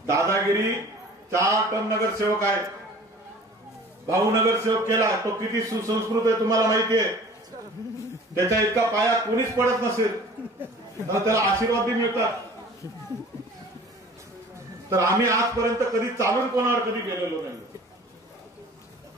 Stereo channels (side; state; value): both; normal; correlation 0.46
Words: दादागिरी 4 टन नगरसेवक आहे. भाऊ नगरसेवक केला तो किती सुसंस्कृत आहे तुम्हाला माहितीये. त्याच्या इतका पाया कोणीच पडत नसेल तर त्याला आशीर्वाद बी मिळतात. तर आम्ही आजपर्यंत कधी चालून कोणावर कधी गेलेलो नाही.